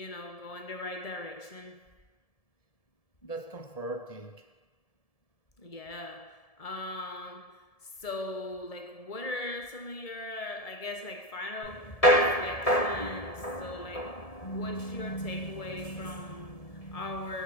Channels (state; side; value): late; right; 1.7 ms